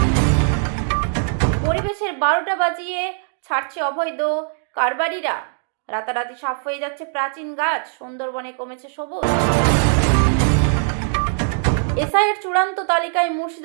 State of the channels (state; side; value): silent; left; digital silence